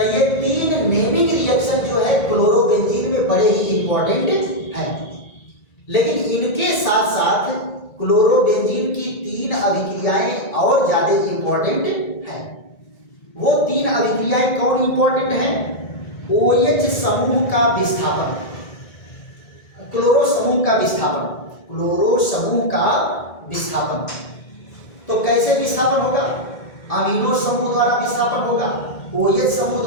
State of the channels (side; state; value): right; late; 1.9 ms